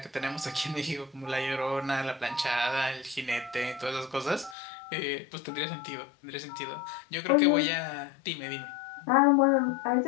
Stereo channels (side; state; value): right; drops out; at 4.5 s